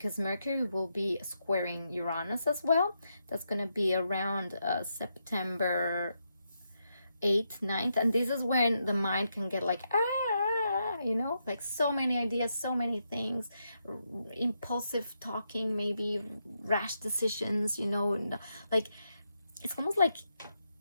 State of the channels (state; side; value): inverted; both; correlation -0.83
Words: Mercury will be squaring Uranus as well. That's going to be around September 8th, 9th, and this is when the mind can get like, like so many ideas, so many things, impulsive talking, maybe rash decisions, like it's almost like